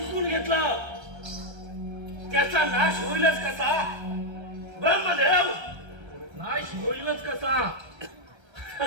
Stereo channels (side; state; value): left; late; 1.3 ms